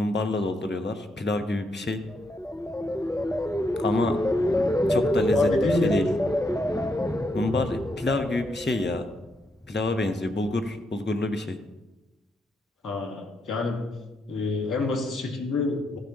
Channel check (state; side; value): normal; both; correlation 0.79